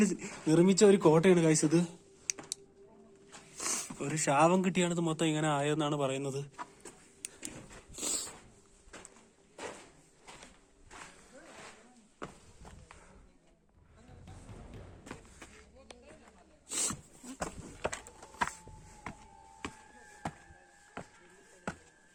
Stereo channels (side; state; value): both; identical; correlation 1.00